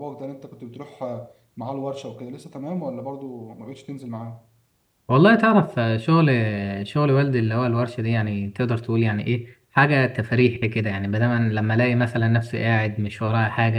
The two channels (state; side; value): identical; both; correlation 1.00